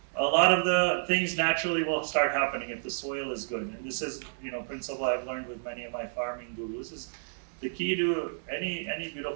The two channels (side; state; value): left; silent; digital silence